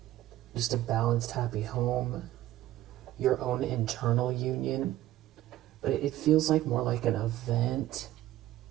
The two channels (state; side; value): quieter; left; 14.5 dB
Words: Just a balanced, happy home. Your own internal union. But it feels like more like an event.